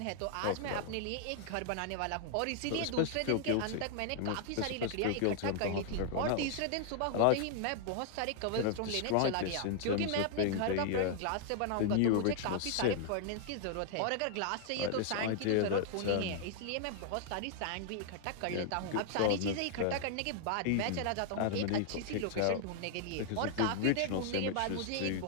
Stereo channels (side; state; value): both; different; correlation 0.00